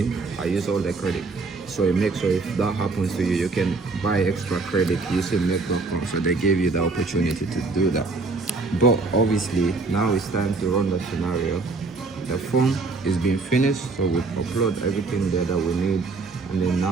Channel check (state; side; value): quieter; left; 3.9 dB